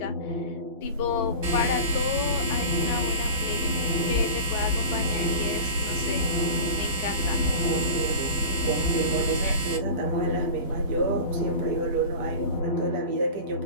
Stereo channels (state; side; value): inverted; both; correlation -0.32